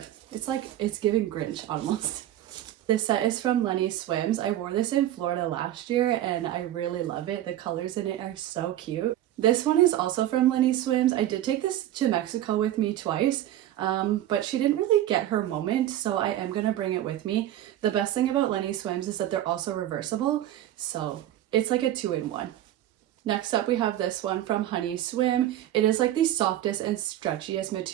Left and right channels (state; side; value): quieter; left; 12.9 dB